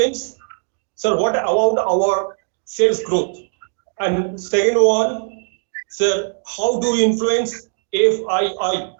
sir, what about our sales growth? And second one, sir, how do we influence FII?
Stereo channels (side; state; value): left; silent; digital silence